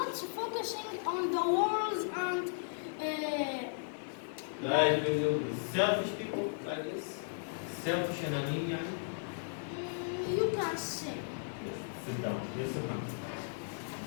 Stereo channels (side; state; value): right; silent; digital silence